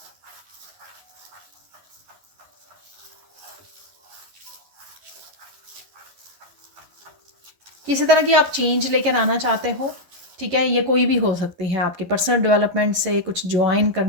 किसी तरह की आप चेंज लेकर आना चाहते हो, ठीक है, ये कोई भी हो सकती है, आपके पर्सनल डेवलपमेंट से कुछ ज्वाइन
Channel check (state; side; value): late; left; 11 ms